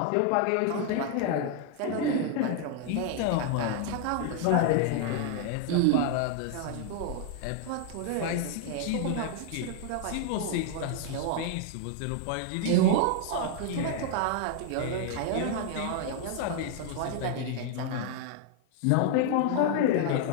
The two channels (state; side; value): different; both; correlation 0.00